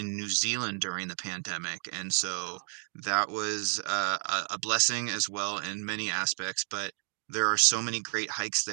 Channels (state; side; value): silent; left; 57 dB below the other